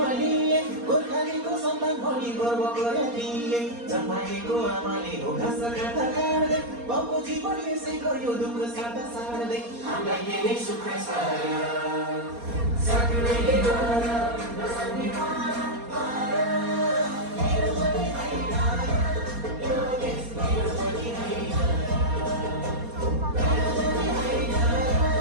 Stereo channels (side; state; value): left; late; 4.2 ms